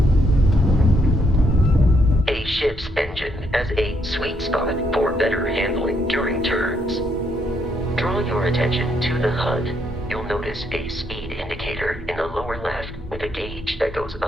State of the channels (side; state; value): both; normal; correlation 0.74